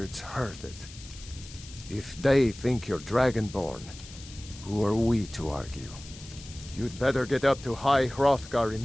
heard it. If they think you're Dragonborn, who are we to argue? You'd better get up to High Hrothgar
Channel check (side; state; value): left; noise; hiss, 17 dB below the sound